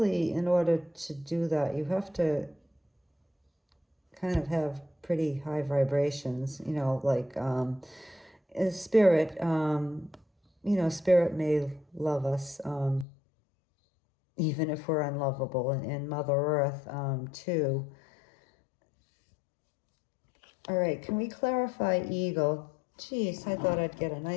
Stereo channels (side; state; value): right; drops out; at 13.1 s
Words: in order to do that, you have to kind of have pretty high vibrations, you know, like spirit, you know, spirit may love us even if we're unlovable, and Mother Earth too. All right, can we clarify eagle? Geez, I thought I'd get a